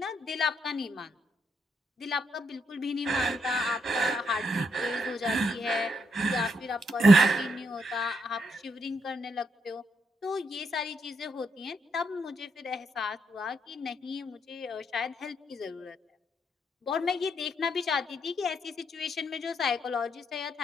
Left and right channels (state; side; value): normal; both; correlation 0.78